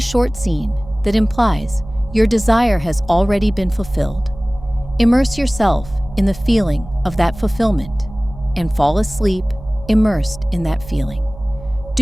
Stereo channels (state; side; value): noise; right; hum, 16 dB below the sound